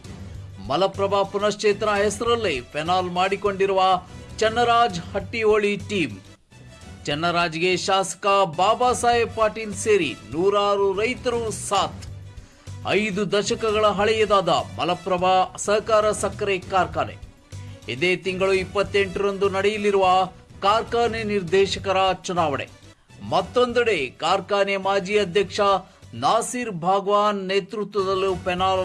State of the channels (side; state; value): both; identical; correlation 1.00